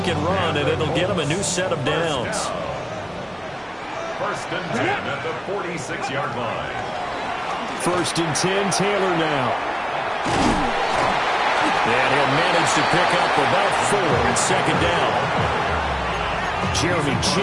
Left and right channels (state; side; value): identical; both; correlation 1.00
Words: and run, and it'll get him a new set of downs. 1st and 10 at the 46-yard line. 1st and 10, Taylor now. And he'll manage to pick up about 4 at 2nd down. Jeremy